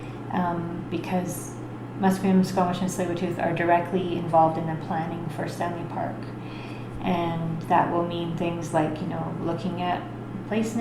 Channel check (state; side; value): identical; both; correlation 1.00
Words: because Musqueam, Squamish, and Tsleil-Waututh are directly involved in the planning for Stanley Park. And that will mean things like, looking at place